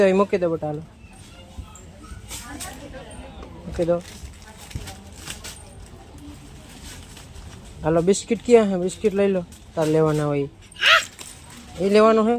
દો બેટા હાલો મૂકી દો હાલો બિસ્કિટ ક્યાં છે બિસ્કિટ લઈ લો તાર લેવાના હોય એ લેવાનું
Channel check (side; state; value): both; identical; correlation 1.00